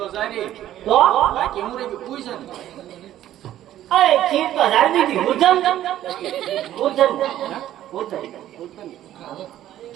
સારી તો બાકી હું રે પૂછે ને. અરે ખીર તો રાજનીતિ ઉર્ધન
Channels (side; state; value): left; quieter; 12.6 dB